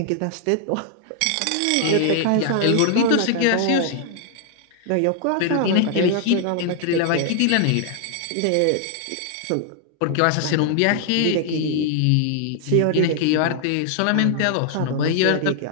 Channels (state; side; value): different; both; correlation 0.00